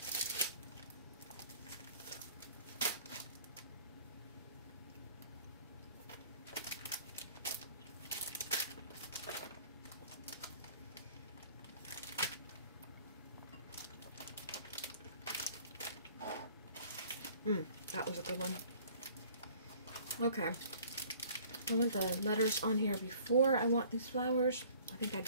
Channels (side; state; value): both; inverted; correlation -0.53